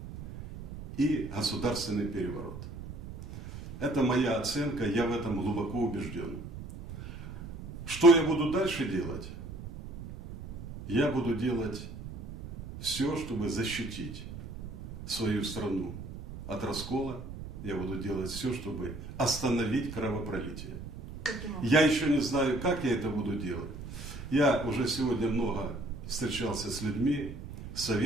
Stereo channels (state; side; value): noise; right; rumble, 11 dB below the sound